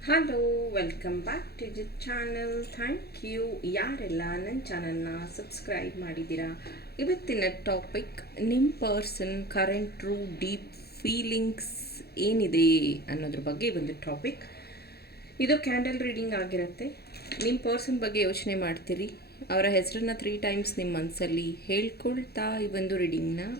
Hello, welcome back to the channel. Thank you ಯಾರೆಲ್ಲ ನನ್ನ ಚಾನಲ್ನ ಸಬ್ಸ್ಕ್ರೈಬ್ ಮಾಡಿದ್ದೀರಾ. ಇವತ್ತಿನ ಟಾಪಿಕ್ ನಿಮ್ಮ person current true deep feelings ಏನಿದೆ ಅನ್ನೋದ್ರ ಬಗ್ಗೆ ಒಂದು ಟಾಪಿಕ್. ಇದು ಕ್ಯಾಂಡಲ್ ರೀಡಿಂಗ್ ಆಗಿರುತ್ತೆ. ನಿಮ್ಮ ಪರ್ಸನ್ ಬಗ್ಗೆ ಯೋಚನೆ ಮಾಡ್ತೀರಿ, ಅವರ ಹೆಸರನ್ನ 3 ಟೈಮ್ಸ್ ನಿಮ್ಮ ಮನಸ್ಸಲ್ಲಿ ಹೇಳ್ಕೊಳ್ತಾ ಈ ಒಂದು ರೀಡಿಂಗ್ನ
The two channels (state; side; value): late; right; 0.46 ms